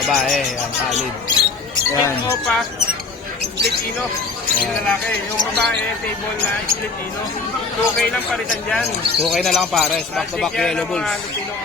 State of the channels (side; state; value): right; quieter; 4.2 dB